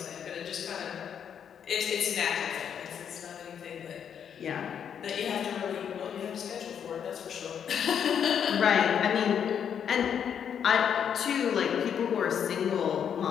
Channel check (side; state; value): right; quieter; 8.2 dB